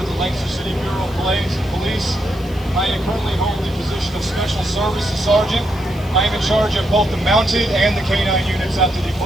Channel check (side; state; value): right; noise; hiss, 25 dB below the sound